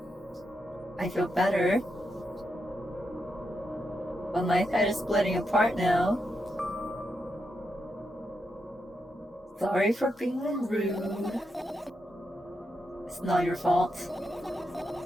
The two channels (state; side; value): normal; both; correlation 0.84